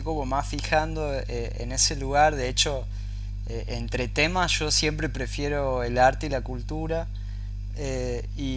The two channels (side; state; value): both; identical; correlation 1.00